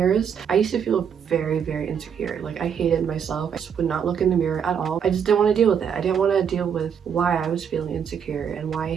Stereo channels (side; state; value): left; quieter; 7.6 dB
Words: I used to feel very, very insecure. Like, I hated myself. I just would not look in the mirror at all. I just didn't want to deal with it. I didn't want to deal with why I was feeling insecure and why I